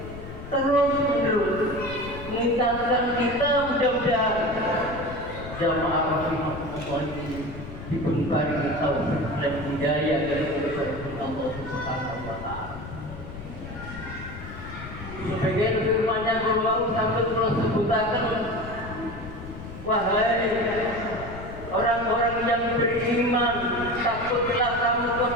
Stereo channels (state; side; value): noise; left; rumble, 12 dB below the sound